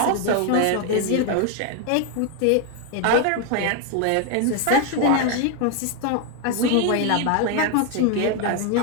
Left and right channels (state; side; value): different; both; correlation 0.01